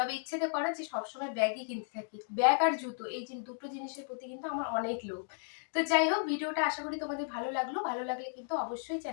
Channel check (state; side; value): silent; right; digital silence